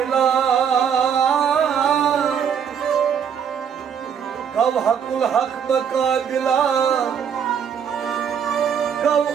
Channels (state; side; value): quieter; left; 7.7 dB